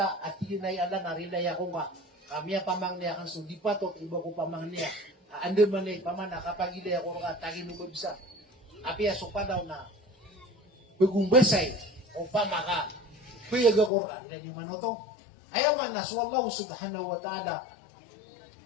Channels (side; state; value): right; drops out; at 13.9 s